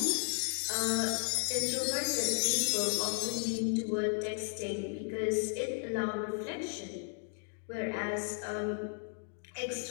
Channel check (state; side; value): silent; right; 55 dB below the other